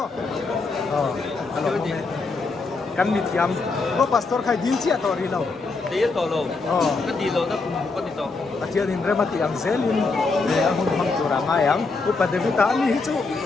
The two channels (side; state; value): right; quieter; 3.9 dB